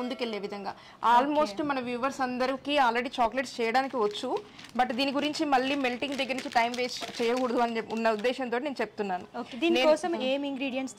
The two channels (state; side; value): identical; both; correlation 1.00